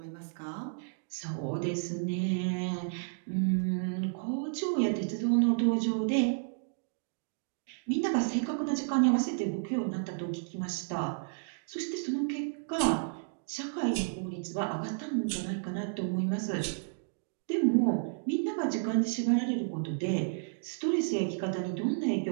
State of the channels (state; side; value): silent; left; digital silence